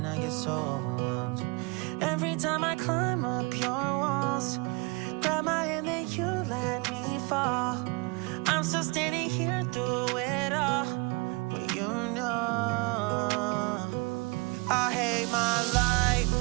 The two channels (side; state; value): left; quieter; 27.9 dB